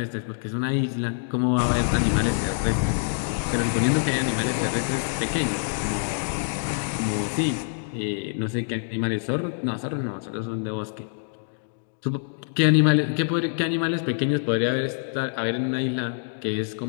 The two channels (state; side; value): silent; right; digital silence